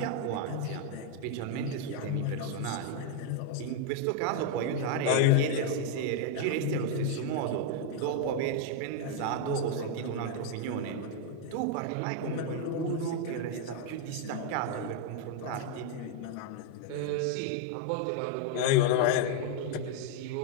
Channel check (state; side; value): different; both; correlation 0.00